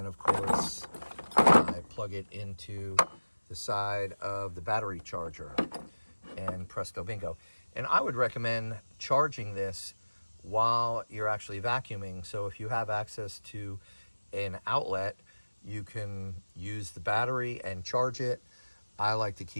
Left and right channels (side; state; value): both; inverted; correlation -1.00